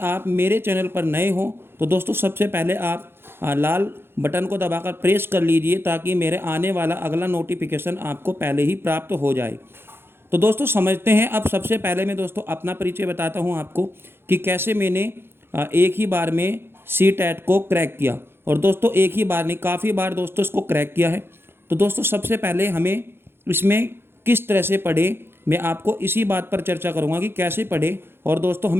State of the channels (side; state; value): left; late; 0.11 ms